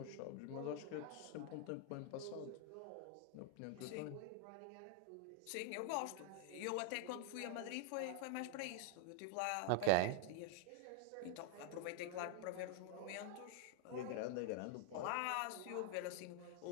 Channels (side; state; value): both; different; correlation 0.00